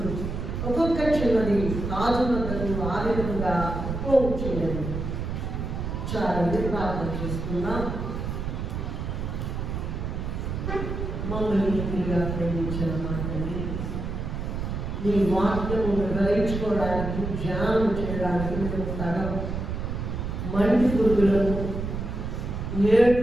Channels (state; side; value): noise; right; rumble, 4 dB below the sound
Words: ఒక్కొక్క చిన్నది రాజు వద్దకు ఆ విధంగా పోవచ్చున్నది. చాలండి, ప్రార్థన చేసుకున్నాం. మమ్మల్ని తిరిగా ప్రేమించిన మాటని నీ వాక్యము గ్రహించుకోవడానికి, ధ్యానం చేయడానికి మేము తగం. మంటి పురుగులను